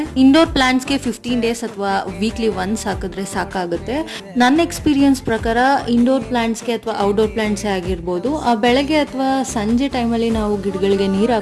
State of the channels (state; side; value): identical; both; correlation 1.00